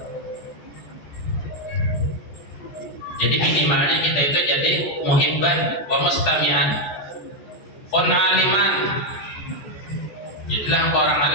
Jadi minimalnya kita itu jadi muhibban wa mustami'an, pun aliman. Jadilah orang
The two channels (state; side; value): late; right; 14 ms